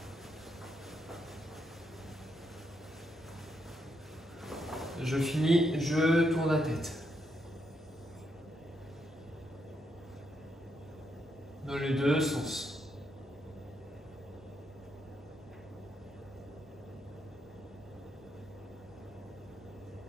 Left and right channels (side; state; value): both; normal; correlation 0.79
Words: Je finis, je tourne la tête. Dans les deux sens.